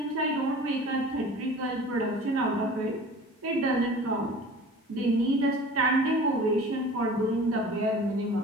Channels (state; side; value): normal; both; correlation 0.42